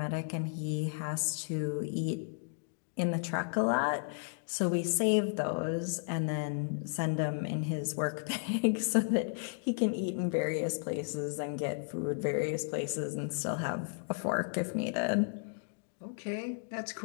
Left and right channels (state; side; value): silent; right; digital silence